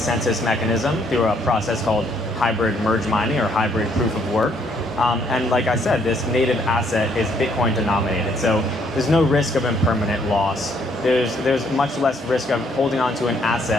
mechanism through a process called hybrid merge mining or hybrid proof of work. And like I said, this native asset is Bitcoin denominated. So there's no risk of impermanent loss. There's much less risk of holding on to an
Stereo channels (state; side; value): normal; both; correlation 0.68